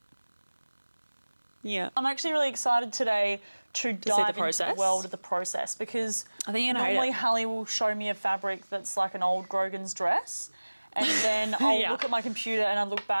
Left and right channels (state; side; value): inverted; both; correlation -1.00